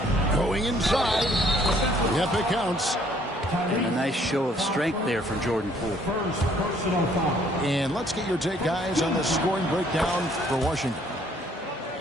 Going inside. Yep, it counts. And a nice show of strength there from Jordan Poole. And let's get your take, guys, on the scoring breakdown for Washington.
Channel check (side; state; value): both; normal; correlation 0.62